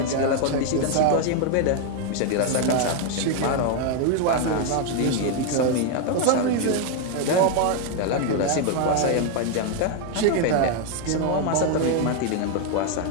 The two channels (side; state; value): both; different; correlation 0.01